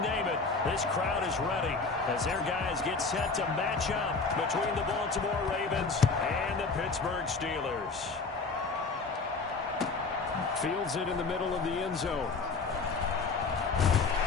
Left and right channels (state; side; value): quieter; right; 4.2 dB